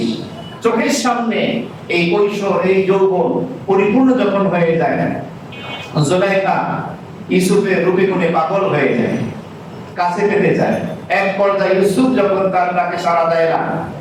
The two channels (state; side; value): identical; both; correlation 1.00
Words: চোখের সামনে এই কৈশোর, এই যৌবন পরিপূর্ণ যখন হয়ে যায়, জুলাইখা ইউসুফের রূপে গুণে পাগল হয়ে যায়, কাছে পেতে চায়। এক পর্যায়ে ইউসুফ যখন তার ডাকে সাড়া দেয় না,